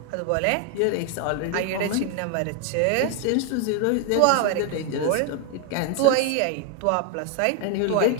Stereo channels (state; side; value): different; both; correlation 0.01